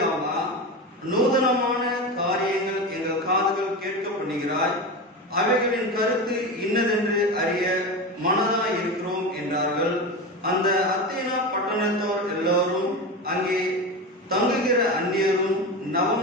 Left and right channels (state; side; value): normal; both; correlation 0.23